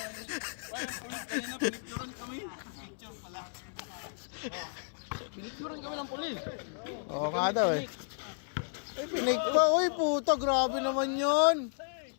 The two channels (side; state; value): right; silent; 56 dB below the other